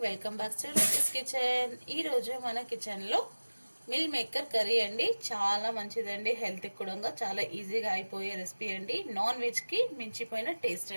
welcome back to Ruchis kitchen. ఈరోజు మన కిచెన్లో మిల్ మేకర్ కర్రీ అండి. చాలా మంచిదండి, హెల్త్కి కూడా చాలా ఈజీగా అయిపోయే రెసిపీ అండి. నాన్ వెజ్కి మించిపోయిన టేస్ట్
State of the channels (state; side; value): inverted; both; correlation -1.00